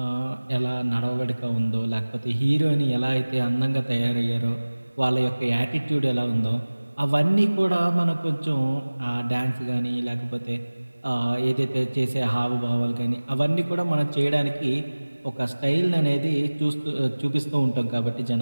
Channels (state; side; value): inverted; both; correlation -1.00